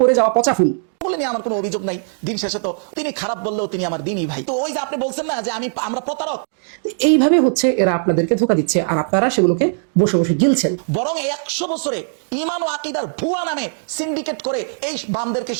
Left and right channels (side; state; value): left; silent; 66 dB below the other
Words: পড়ে যাওয়া পচা ফুল বলে নিয়ে আমার কোনো অভিযোগ নাই। দিন শেষে তো তিনি খারাপ বললেও তিনি আমার দিনই ভাই। তো ওই যে আপনি বলছেন না যে আমরা প্রতারক, এইভাবে হচ্ছে এরা আপনাদেরকে ধোঁকা দিচ্ছে আর আপনারা সেগুলোকে বসে বসে গিলছেন। বরং 100 বছরে ইমান ও আকীদার ভুয়া নামে সিন্ডিকেট করে এই বামদেরকে